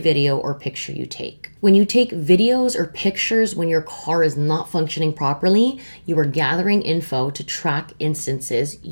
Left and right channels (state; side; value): inverted; both; correlation -1.00